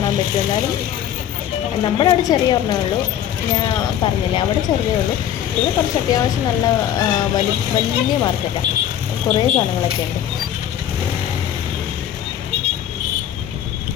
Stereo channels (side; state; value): right; quieter; 10.6 dB